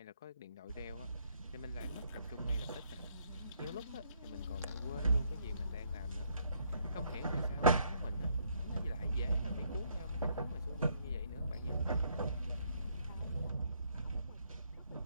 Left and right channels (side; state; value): both; inverted; correlation -0.70